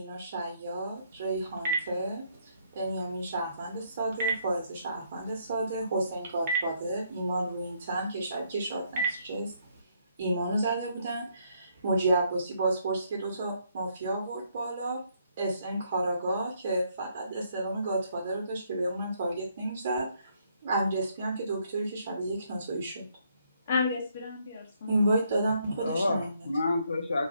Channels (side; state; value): both; inverted; correlation -0.71